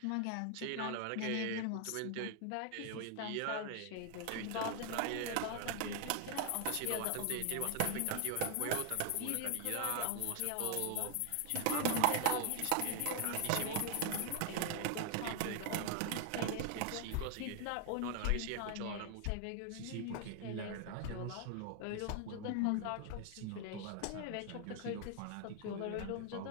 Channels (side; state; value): both; different; correlation 0.00